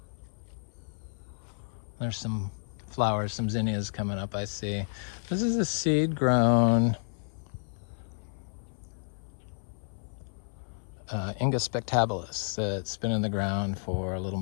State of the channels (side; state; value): right; silent; 57 dB below the other